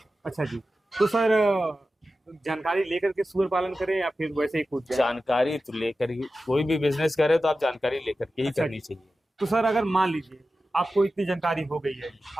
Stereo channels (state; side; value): normal; both; correlation 0.93